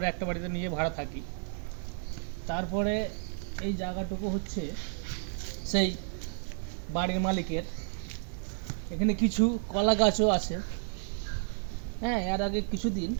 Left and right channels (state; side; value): silent; left; 57 dB below the other